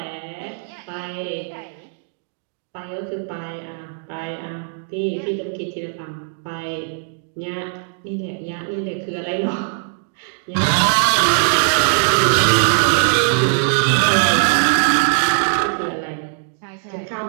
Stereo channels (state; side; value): silent; left; digital silence